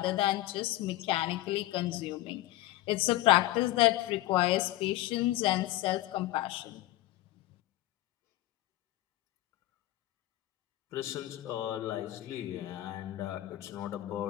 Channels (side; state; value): right; quieter; 16.5 dB